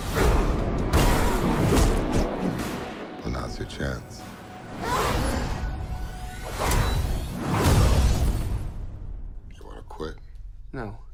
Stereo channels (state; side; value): identical; both; correlation 1.00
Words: Well, now's your chance. You want to quit? No,